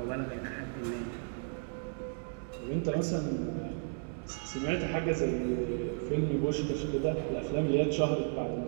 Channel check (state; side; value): silent; left; 55 dB below the other